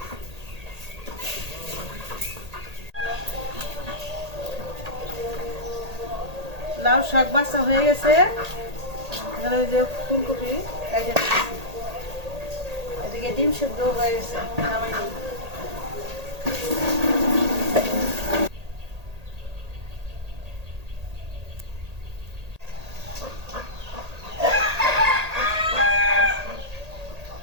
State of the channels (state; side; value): late; left; 1.8 ms